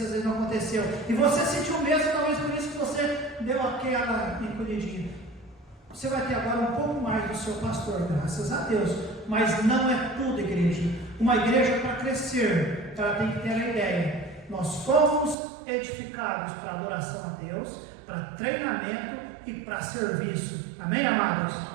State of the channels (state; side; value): drops out; left; at 15.4 s